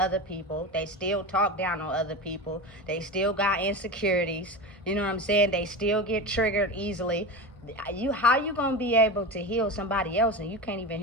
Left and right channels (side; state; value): both; normal; correlation 0.25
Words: people. They still talk down on other people. They still got insecurities. You know what I'm saying? They still get triggered easily. How you going to be able to heal somebody else and you can't even